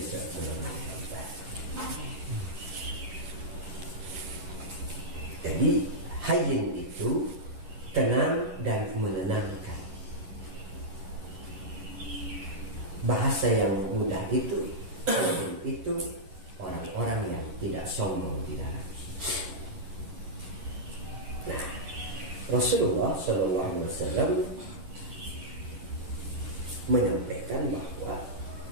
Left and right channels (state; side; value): late; left; 11 ms